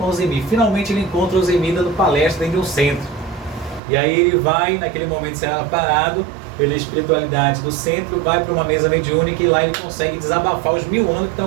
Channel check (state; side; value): drops out; left; at 3.8 s